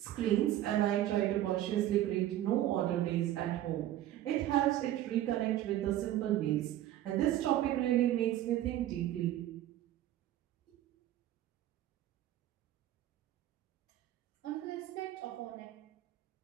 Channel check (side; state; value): left; quieter; 13.3 dB